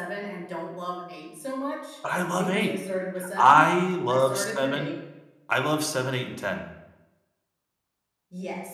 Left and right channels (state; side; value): identical; both; correlation 1.00